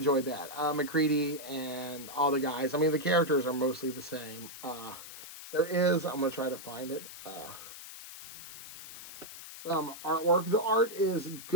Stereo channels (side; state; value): left; noise; hiss, 13 dB below the sound